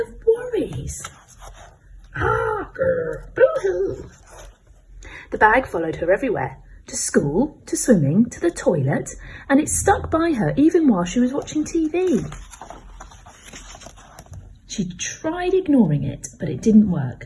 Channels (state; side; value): identical; both; correlation 1.00